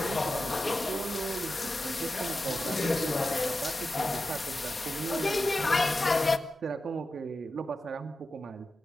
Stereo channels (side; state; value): both; normal; correlation 0.92